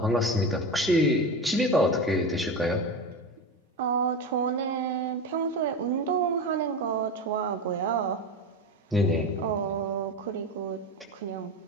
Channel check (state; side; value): normal; both; correlation 0.23